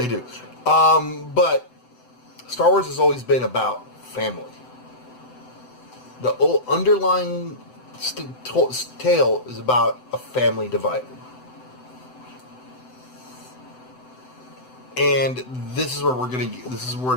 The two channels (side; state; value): right; late; 7.9 ms